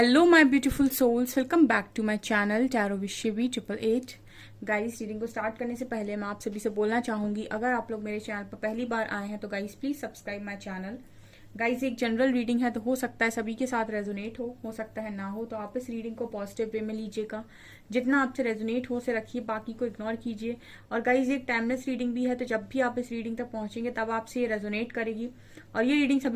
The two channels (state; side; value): identical; both; correlation 1.00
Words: my beautiful souls, welcome back to my channel tarot Vishwi 888। Guys, reading को start करने से पहले मैं आप सभी से बोलना चाहूंगी, अगर आप लोग मेरे चैनल पर पहली बार आए हैं तो guys please subscribe my channel. Guys, एक जनरल रीडिंग है तो हो सकता है सभी के साथ रेजोनेट हो सकता है ना हो, तो आप इस रीडिंग को पॉजिटिव वे में लीजिएगा। जितना आपसे रेजोनेट हो उसे रखिए, बाकी को इग्नोर कीजिए। और गाइस, एक टाइमलेस रीडिंग भी है, तो जब भी आप इस रीडिंग तक पहुंचेंगे तब आपसे ये रेजोनेट करेगी। और ये रीडिंग